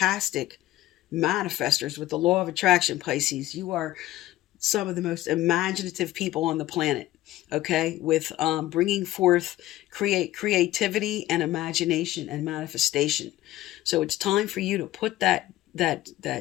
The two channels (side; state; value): right; quieter; 15.4 dB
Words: manifestors with the law of attraction, Pisces. You are some of the most imaginative people on the planet, okay, with bringing forth creativity and imagination and manifestation. So it's time for you to put that